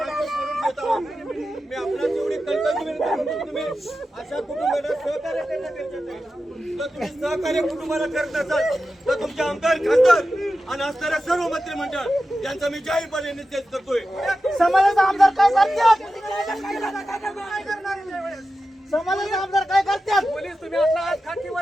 आपल्याला जेवढी कल्पना तुम्ही अशा कुटुंबाला सहकार्य करणं गरजेचं आहे. जर तुम्ही सहकार्य कुटुंबाला करत असाल तर तुमचे आमदार खासदार आणि असणाऱ्या सर्व मंत्रिमंडळ यांचा मी जाहीरपणे निषेध करतोय. समाजाचा आमदार काय करतात? समाजाचे आमदार काय करतात? पोलीस तुम्ही आपला आज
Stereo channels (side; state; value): both; normal; correlation 0.92